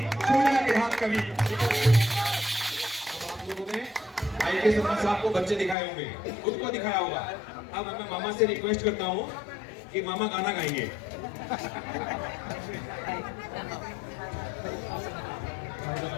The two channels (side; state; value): right; drops out; at 5.8 s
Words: के हाथ कभी आप लोगों ने I.K. शर्मा साहब को बच्चे दिखाए होंगे, खुद को दिखाया होगा। अब मैं मामा से रिक्वेस्ट करता हूँ कि मामा गाना गाएंगे।